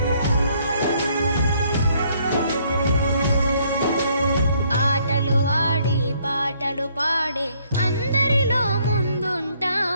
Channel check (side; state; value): both; inverted; correlation -0.67